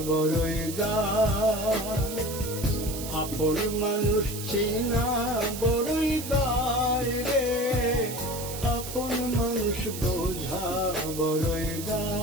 বড়ই দায়। আপন মানুষ চিনা বড়ই দায় রে, আপন মানুষ বোঝা বড়ই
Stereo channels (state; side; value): noise; right; hiss, 9 dB below the sound